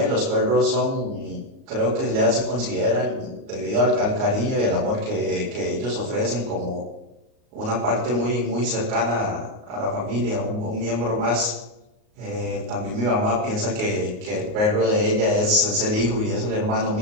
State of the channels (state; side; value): late; left; 38 ms